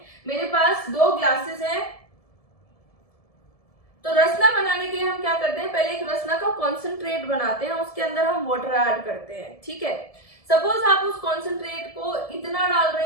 मेरे पास 2 ग्लासेस हैं, तो रसना बनाने के लिए हम क्या करते हैं, पहले एक रसना का कॉन्सेंट्रेट बनाते हैं, उसके अंदर हम वाटर ऐड करते हैं। ठीक है, सपोज आप उस कॉन्सेंट्रेट को इतना डाल रहे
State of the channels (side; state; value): right; late; 1.7 ms